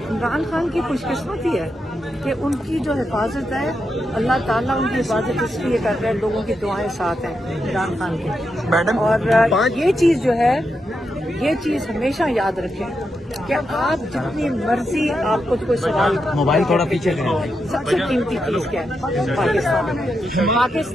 عمران خان کی خوش قسمتی ہے کہ ان کی جو حفاظت ہے اللہ تعالیٰ ان کی حفاظت اس لیے کر رہے ہیں, لوگوں کی دعائیں ساتھ ہیں عمران خان کے. میڈم اور یہ چیز جو ہے یہ چیز ہمیشہ یاد رکھیں کہ آپ جتنی مرضی آپ کو کوئی سوال, موبائل تھوڑا پیچھے لیں. سب سے قیمتی چیز کیا ہے؟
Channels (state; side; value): normal; both; correlation 0.85